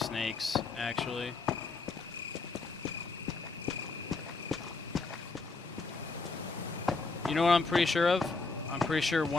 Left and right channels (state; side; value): quieter; right; 4.0 dB